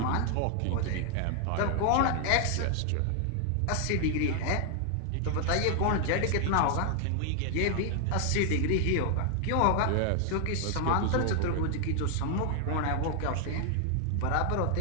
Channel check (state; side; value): different; both; correlation 0.00